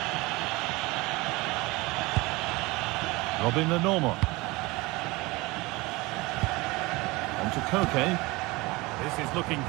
Robin the Normal. On to Koke. This is looking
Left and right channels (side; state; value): left; quieter; 22.8 dB